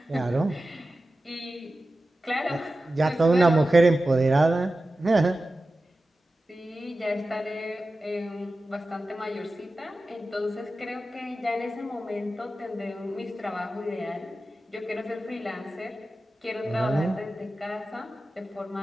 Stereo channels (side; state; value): both; normal; correlation 0.94